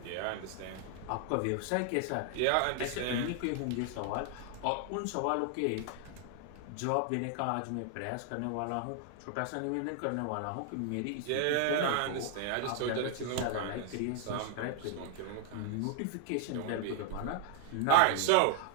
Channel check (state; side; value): different; both; correlation 0.00